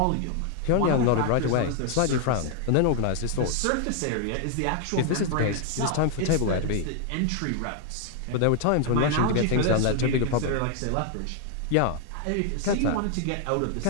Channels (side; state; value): both; different; correlation 0.00